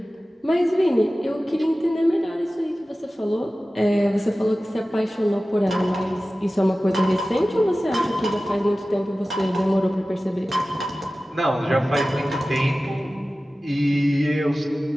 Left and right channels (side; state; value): both; normal; correlation 0.96